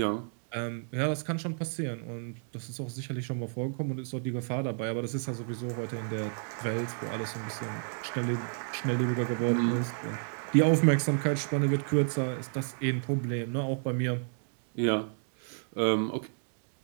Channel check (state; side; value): silent; left; 57 dB below the other